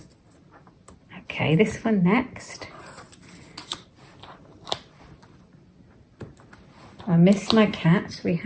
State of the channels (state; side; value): identical; both; correlation 1.00